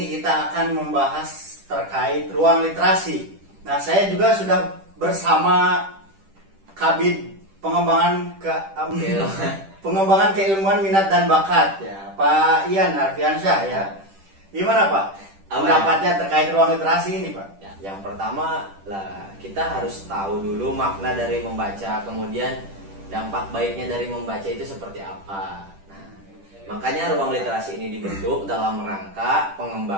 kita akan membahas terkait ruang literasi. Nah, saya juga sudah bersama Kabid pengembangan keilmuan minat dan bakat ya, Pak Ian Arfiansyah ya. Gimana Pak? Pendapatnya terkait ruang literasi ini Pak? Yang pertama lah, kita harus tahu dulu makna dari membaca, kemudian dampak baiknya dari membaca itu seperti apa. Nah, makanya ruang literasi ini dibentuk dalam rangka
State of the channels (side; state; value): left; late; 10 ms